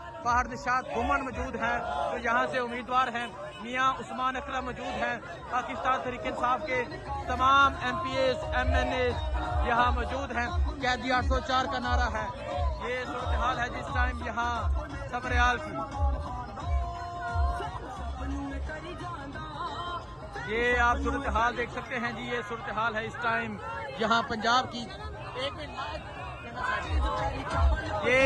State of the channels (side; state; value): both; identical; correlation 1.00